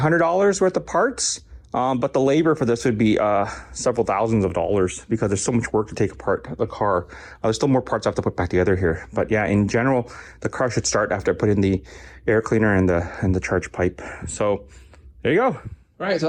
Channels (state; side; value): identical; both; correlation 1.00